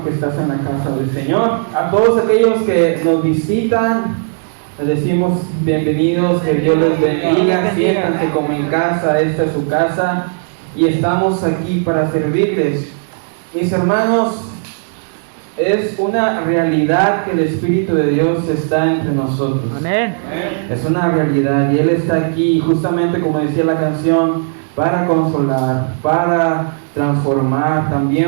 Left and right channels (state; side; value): silent; left; digital silence